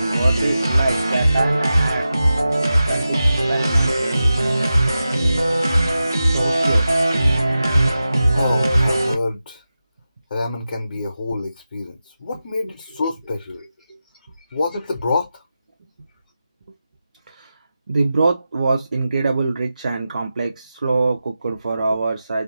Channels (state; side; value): inverted; both; correlation -0.92